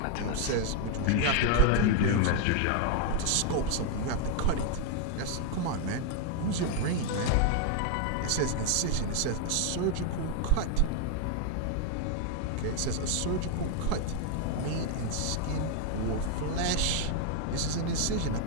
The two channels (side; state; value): both; different; correlation 0.00